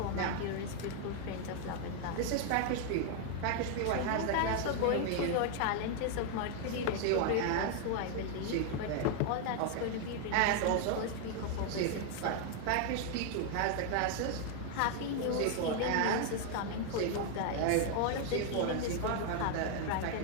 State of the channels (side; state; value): both; different; correlation 0.00